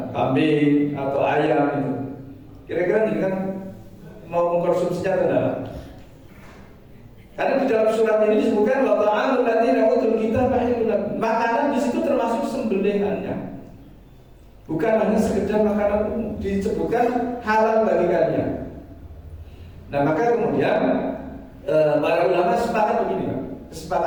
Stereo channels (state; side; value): identical; both; correlation 1.00